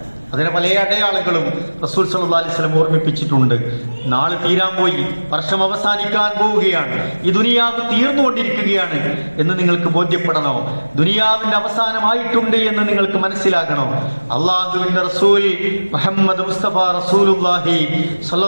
അതിന് പല അടയാളങ്ങളും റസൂൽ സല്ലല്ലാഹു അലൈഹി വസല്ലം ഓർമ്മിപ്പിച്ചിട്ടുണ്ട്. നാളെ തീരാൻ പോയി, വർഷം അവസാനിക്കാൻ പോവുകയാണ്, ഈ ദുനിയാവ് തീർന്നുകൊണ്ടിരിക്കുകയാണ് എന്ന് നിങ്ങൾക്ക് ബോധ്യപ്പെടണോ? ദുനിയാവിന്റെ അവസാനമായിട്ടുണ്ട് എന്ന് നിങ്ങൾക്ക് മനസ്സിലാകണോ? അള്ളാഹുവിന്റെ റസൂൽ മുഹമ്മദ് മുസ്തഫ റസൂലുള്ളാഹി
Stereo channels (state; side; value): inverted; both; correlation -1.00